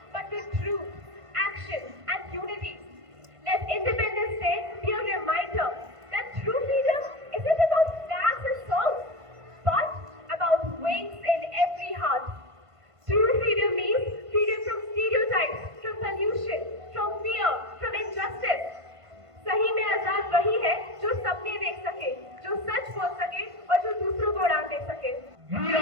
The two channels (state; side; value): late; left; 1.5 ms